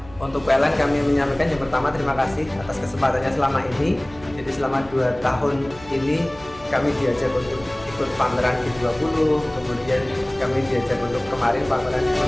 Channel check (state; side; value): noise; right; hum, 20 dB below the sound